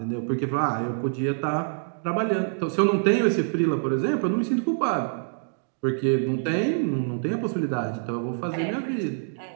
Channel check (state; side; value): silent; left; digital silence